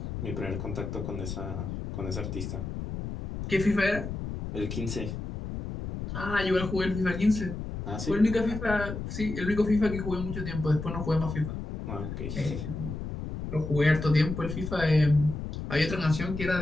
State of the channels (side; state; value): left; noise; rumble, 6 dB below the sound